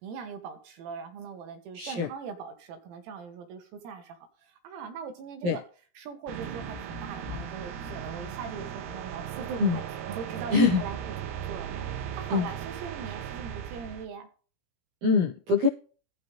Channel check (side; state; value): left; late; 17 ms